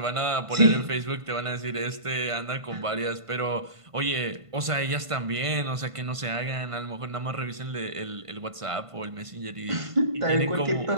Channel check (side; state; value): left; late; 1.5 ms